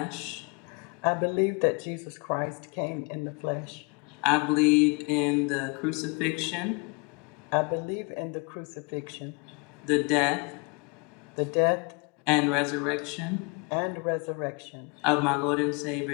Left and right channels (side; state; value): right; quieter; 31.8 dB